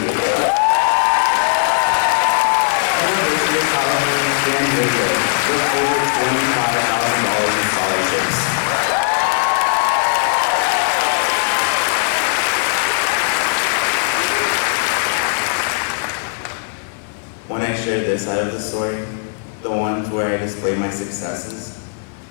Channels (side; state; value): right; silent; digital silence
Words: University of California, San Diego, with over $25,000 in scholarships. When I share this side of the story, the ones where I display my successes,